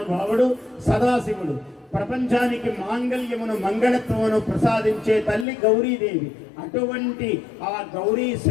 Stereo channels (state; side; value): drops out; right; at 5.5 s